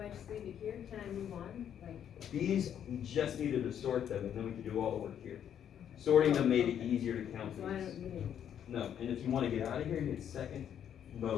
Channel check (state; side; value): quieter; right; 9.3 dB